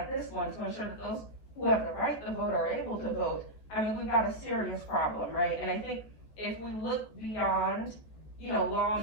this one to ensure that those who have the right to vote are able to vote. I mean, we've got a serious problem, right? And I think if we look beyond,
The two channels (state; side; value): late; right; 14 ms